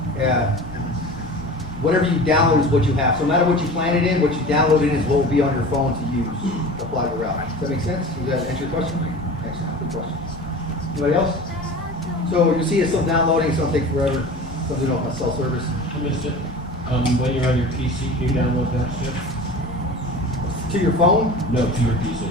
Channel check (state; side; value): normal; both; correlation 0.36